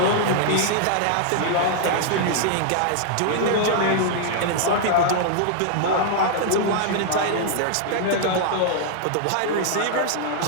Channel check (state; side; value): different; both; correlation -0.01